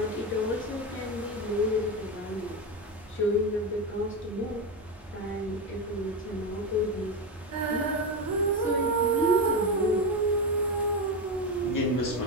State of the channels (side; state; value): both; normal; correlation 0.15